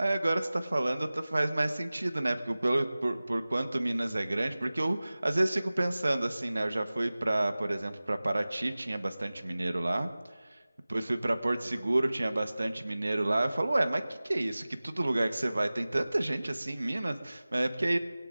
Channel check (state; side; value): inverted; both; correlation -0.98